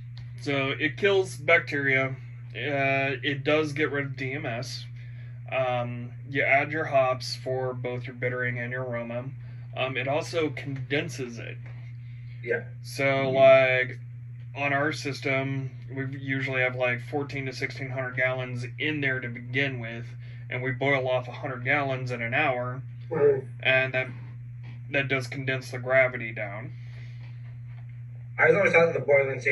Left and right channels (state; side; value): identical; both; correlation 1.00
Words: So it kills bacteria. It does get rid of DMS. You add your hops for both your bittering and your aroma. It also condenses it. Yeah. So, like, on our system, we usually have like 14 to 1600 gallons in there to begin with, and we boil off 100 gallons in an hour, and that does condense the gravity down. I was always thought that the boiling